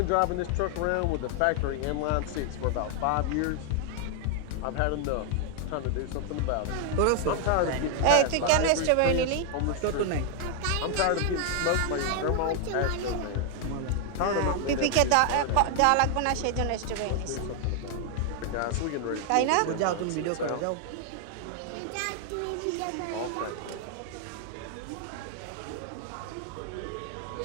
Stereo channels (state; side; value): different; both; correlation 0.00